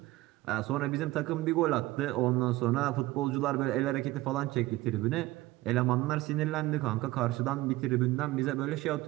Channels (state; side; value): quieter; left; 18.2 dB